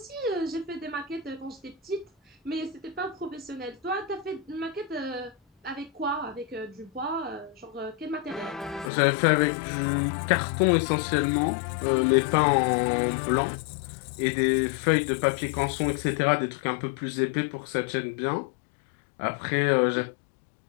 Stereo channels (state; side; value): drops out; right; at 8.9 s